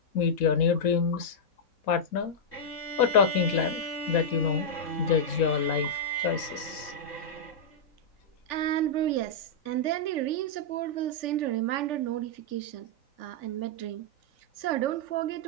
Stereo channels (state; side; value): late; right; 4.1 ms